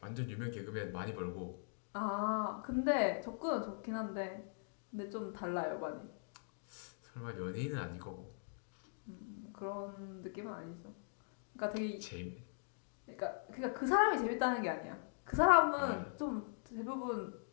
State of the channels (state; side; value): silent; right; digital silence